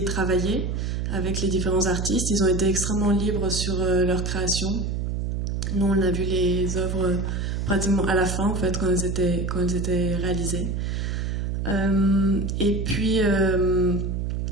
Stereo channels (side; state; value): right; noise; hum, 1 dB below the sound